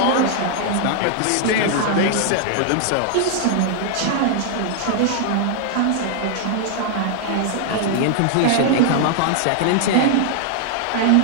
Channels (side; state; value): both; different; correlation -0.01